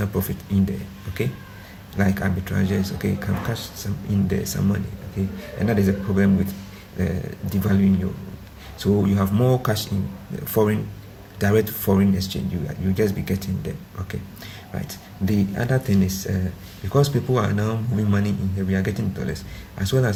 profit in there, okay, like arbitrages, okay, can cash some in there, some money, okay. And that is a problem with devaluing your. So you have more cash in direct foreign exchange. You just be getting them, okay, right. The other thing is because people are now moving money in here, we are getting dollars, as well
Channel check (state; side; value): identical; both; correlation 1.00